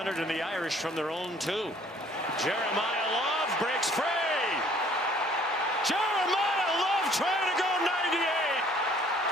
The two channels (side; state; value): both; normal; correlation 0.57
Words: and the Irish from their own 2. Jeremiah Love breaks free. Jeremiah Love trying to go 98.